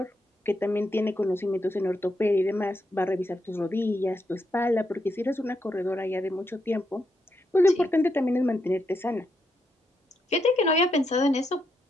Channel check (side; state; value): both; normal; correlation 0.81